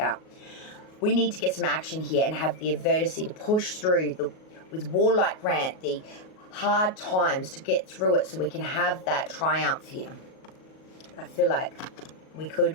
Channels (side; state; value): right; late; 38 ms